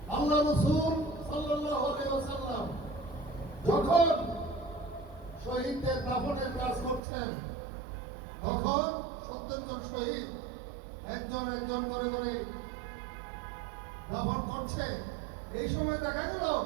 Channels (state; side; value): drops out; left; at 7.0 s